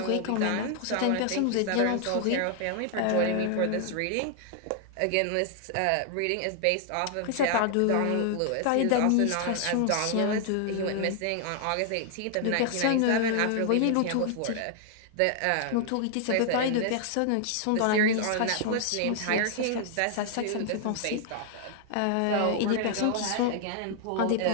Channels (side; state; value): both; different; correlation 0.00